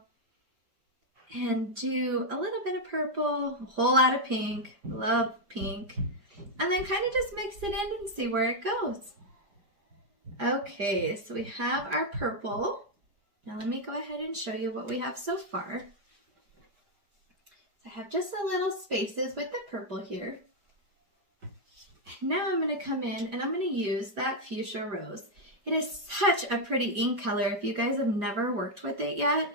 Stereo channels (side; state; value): left; late; 5.0 ms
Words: and do a little bit of purple, a whole lot of pink, love pink, and then kind of just mix it in and see where it goes. Okay, so we have our purple. Now let me go ahead and show you what we have so far. I have just a little spaces with the purple here. And now I'm going to come in and I'm going to use that fuchsia rose. It is such a pretty ink color. If you guys have never worked with it yet,